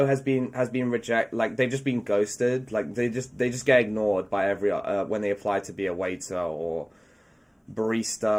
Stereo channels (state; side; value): identical; both; correlation 1.00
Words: has been rejected. Like, they've just been ghosted. Like, they just get ignored by when they apply to be a waiter or